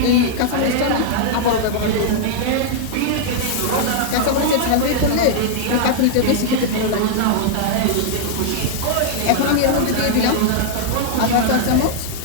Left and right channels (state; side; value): different; both; correlation -0.01